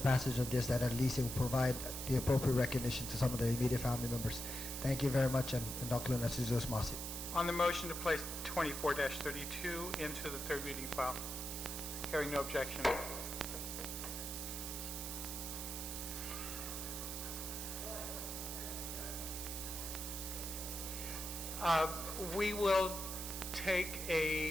of this, that at least it will provide the appropriate recognition to some of the immediate family members. Thank you very much, and Dr. Narciso Masi. On the motion to place 24-32 into the third reading file, hearing no objection. We will take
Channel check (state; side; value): noise; right; hiss, 6 dB below the sound